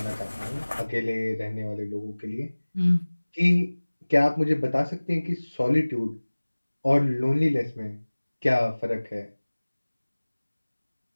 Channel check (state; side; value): inverted; both; correlation -1.00